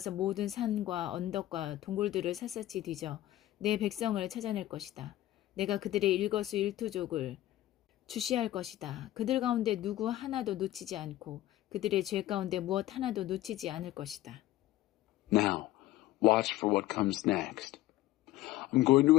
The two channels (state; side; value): quieter; right; 15.1 dB